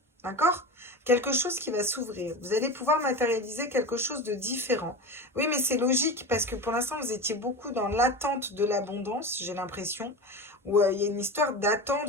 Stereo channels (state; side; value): normal; both; correlation 0.27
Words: d'accord? Quelque chose qui va s'ouvrir. Vous allez pouvoir matérialiser quelque chose de différent. Oui, mais c'est logique, parce que pour l'instant, vous étiez beaucoup dans l'attente de l'abondance, j'ai l'impression, où il y a une histoire